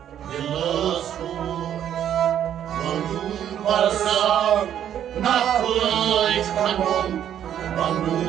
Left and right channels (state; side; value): quieter; left; 10.1 dB